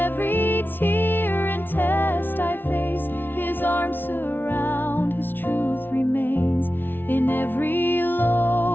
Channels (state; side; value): late; right; 0.099 ms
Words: tear and test I face, His arms surround, His truth remains. In every